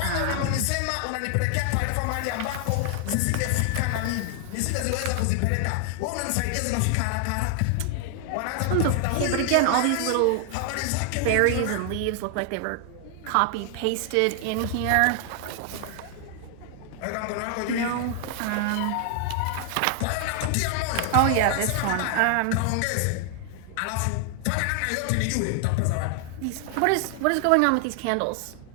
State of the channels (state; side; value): different; both; correlation 0.00